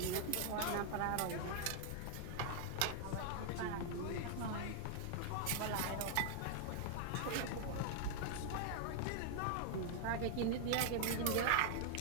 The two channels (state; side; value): different; both; correlation 0.00